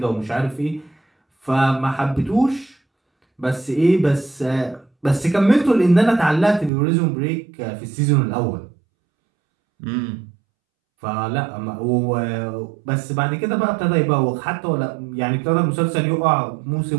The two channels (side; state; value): left; drops out; at 6.7 s